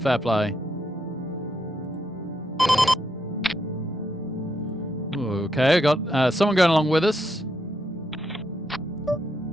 play. Okay, I got someone going along with us.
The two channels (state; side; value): normal; both; correlation 0.79